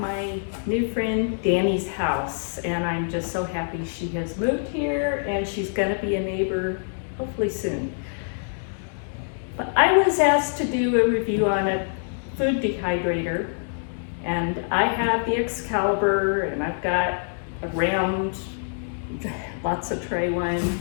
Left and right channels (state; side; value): silent; right; digital silence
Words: new friend Danny's house and I'm just so happy she has moved here and she's going to be a neighbor hopefully soon. But I was asked to do a review on a food dehydrator, and I have the Excalibur and I've got a round, lots of tray one.